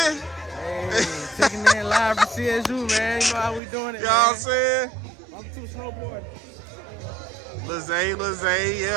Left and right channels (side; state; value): left; drops out; at 3.6 s